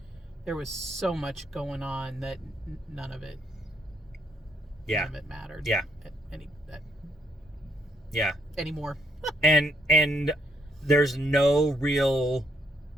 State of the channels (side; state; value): both; normal; correlation 0.71